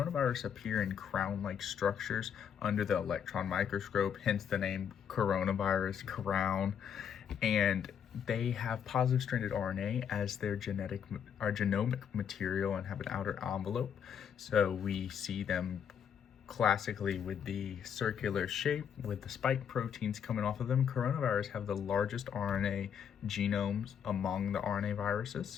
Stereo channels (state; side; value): quieter; right; 8.1 dB